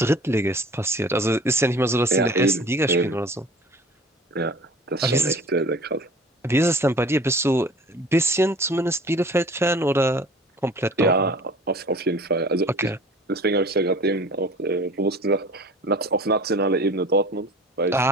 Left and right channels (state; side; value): normal; both; correlation 0.44